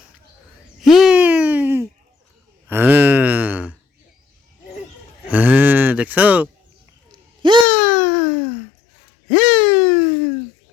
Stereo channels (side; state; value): right; drops out; at 7.7 s